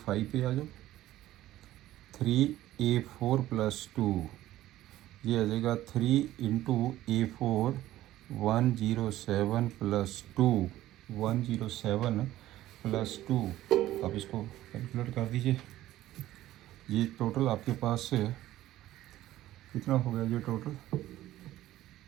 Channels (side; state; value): left; quieter; 14.6 dB